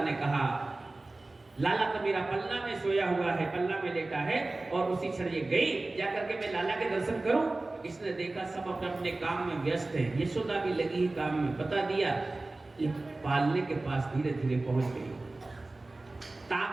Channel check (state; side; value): quieter; left; 3.0 dB